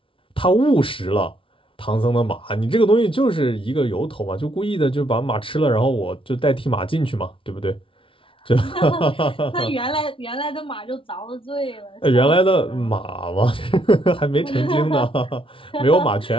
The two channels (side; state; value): right; late; 0.25 ms